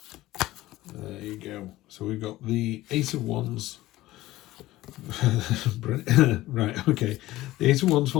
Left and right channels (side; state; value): right; quieter; 16.8 dB